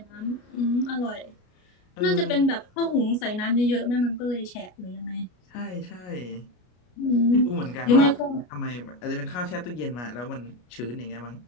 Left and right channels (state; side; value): late; right; 33 ms